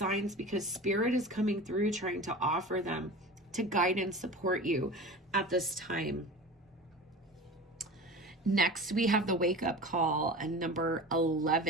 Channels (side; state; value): both; normal; correlation 0.34